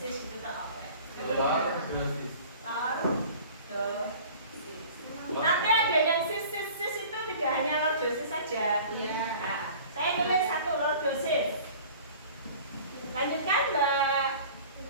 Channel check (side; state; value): both; inverted; correlation -0.45